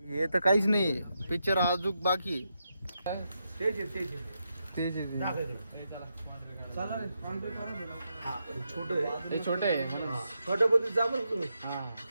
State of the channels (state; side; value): inverted; both; correlation -0.84